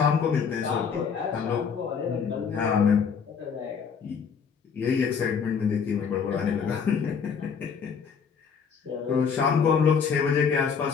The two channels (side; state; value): right; quieter; 6.4 dB